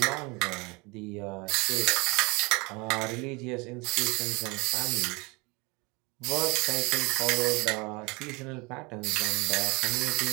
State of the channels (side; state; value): left; quieter; 26.9 dB